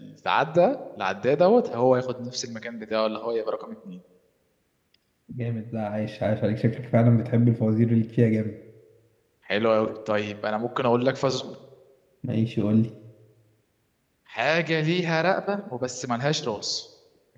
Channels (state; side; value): identical; both; correlation 1.00